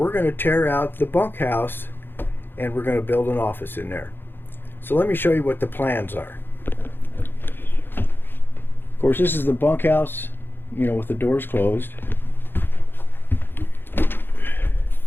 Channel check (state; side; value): late; right; 0.10 ms